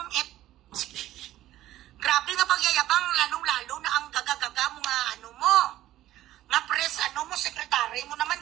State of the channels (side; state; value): left; quieter; 14.3 dB